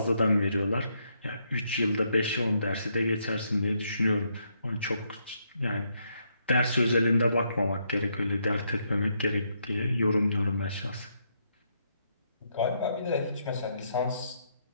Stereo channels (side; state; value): both; inverted; correlation -0.76